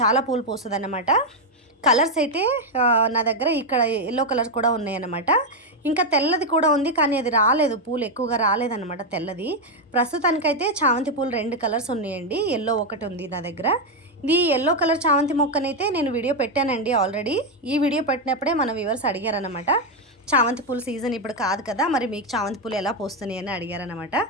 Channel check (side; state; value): both; normal; correlation 0.04